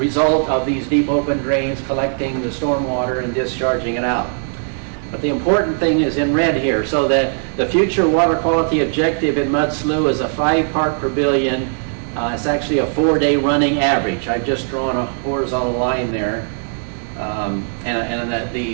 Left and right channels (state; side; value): silent; left; 67 dB below the other